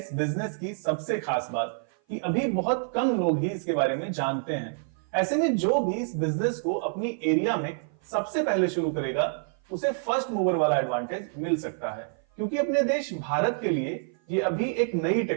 बिजनेस की सबसे खास बात कि अभी बहुत कम लोग ही इसके बारे में जानते हैं। ऐसे में जो भी इस बिजनेस को अपनी एरिया में सबसे पहले शुरू करेगा, उसे फर्स्ट मूवर वाला एडवांटेज मिल सकता है, क्योंकि अपने देश भारत के लिए ये अभी एक नई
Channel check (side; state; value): left; silent; 55 dB below the other